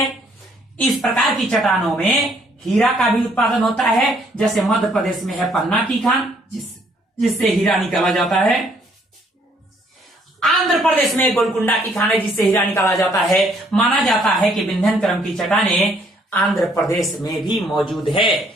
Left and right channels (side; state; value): both; normal; correlation 0.65